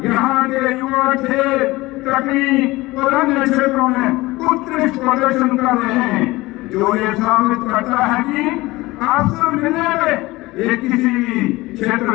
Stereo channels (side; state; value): right; quieter; 20.2 dB